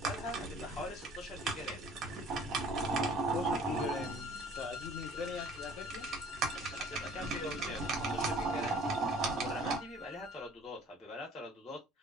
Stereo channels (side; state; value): both; normal; correlation 0.51